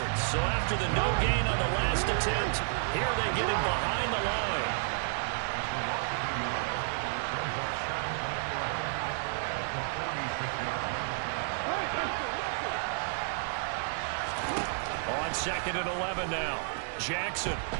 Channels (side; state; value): left; silent; digital silence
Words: So after the no gain on the last attempt, here they get him behind the line. On 2nd and 11 now. Jackson